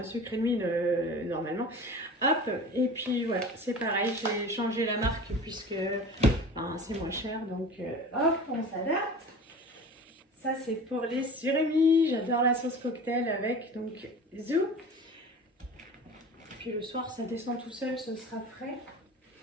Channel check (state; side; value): normal; both; correlation 0.38